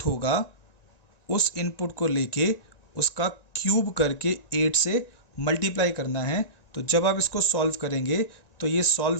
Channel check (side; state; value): right; late; 1.9 ms